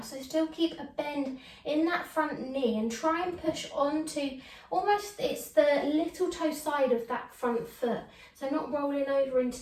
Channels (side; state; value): both; identical; correlation 1.00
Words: So still keep a bend in that front knee and try and push onto almost, it's the little toe side of that front foot. So not rolling over into